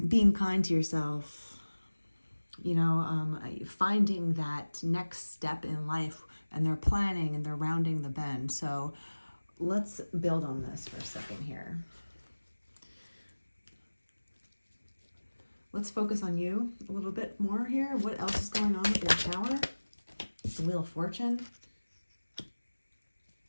Being kind to yourself, finding that next step in life, and they're planning and they're rounding the bend. So let's build on this for a second here. Let's focus on you a little bit more here. What else is going on with your Tower? The Wheel of Fortune.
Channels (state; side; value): inverted; both; correlation -1.00